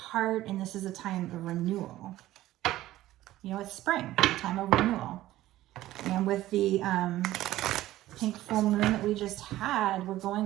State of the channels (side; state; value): left; quieter; 15.2 dB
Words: and this is a time of renewal. You know, it's spring, a time of renewal. And with the pink full moon that we just had, we're